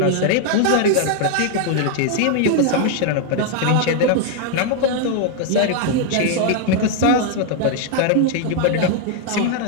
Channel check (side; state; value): both; different; correlation 0.00